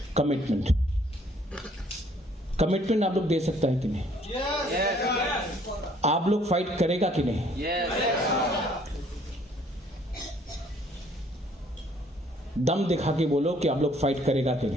कमिटमेंट आप लोग दे सकता है कि नहीं? आप लोग फाइट करेगा कि नहीं? दम दिखा के बोलो कि आप लोग फाइट करेगा कि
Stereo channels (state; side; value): normal; both; correlation 0.61